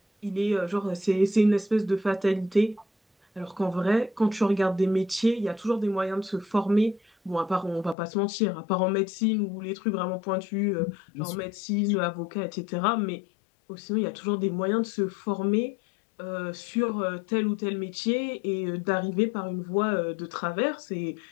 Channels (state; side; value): drops out; right; at 8.0 s